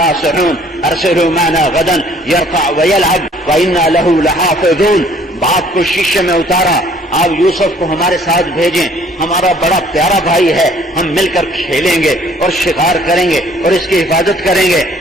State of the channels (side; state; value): both; normal; correlation 0.58